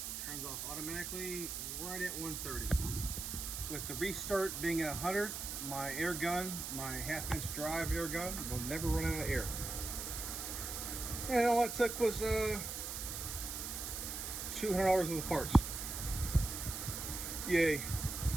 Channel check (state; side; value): noise; right; hiss, 5 dB below the sound